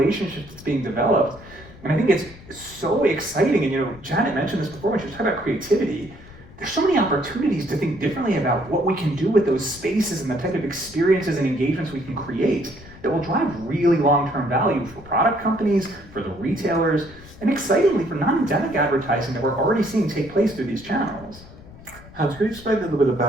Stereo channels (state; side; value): noise; left; rumble, 19 dB below the sound